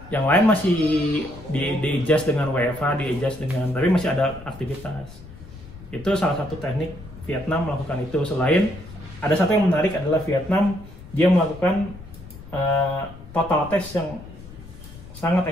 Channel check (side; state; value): left; noise; rumble, 17 dB below the sound